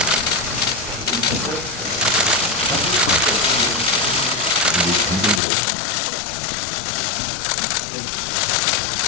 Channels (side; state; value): right; drops out; at 5.4 s